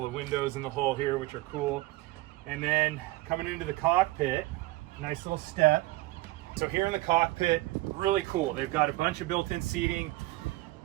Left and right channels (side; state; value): left; quieter; 19.5 dB